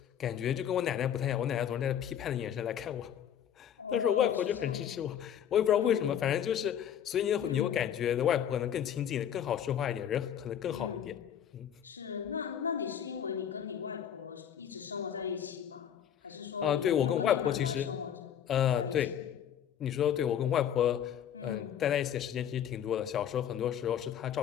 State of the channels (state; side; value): quieter; right; 9.4 dB